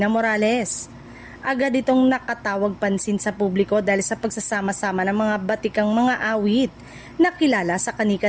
Morales. Agad itong nakatawag pansin sa publiko dahil sa pagsasama-sama ng mga batikang mga awit na kilala sa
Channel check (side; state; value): both; identical; correlation 1.00